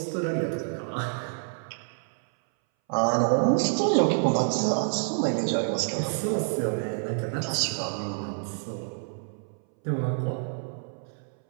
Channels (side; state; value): left; silent; 60 dB below the other